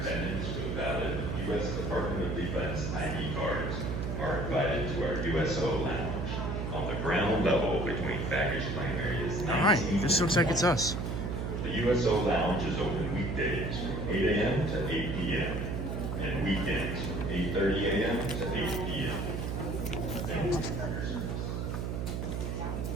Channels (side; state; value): right; noise; hum, 2 dB below the sound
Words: Valid U.S. Department of Defense ID cards are invited to our USO lounge on the ground level between baggage claim areas 19. All right, this looks like it's us. The USO lounge is open weekdays from 8 a.m. to 8 p.m. and weekends from 8:30 a.m. to 8 p.m.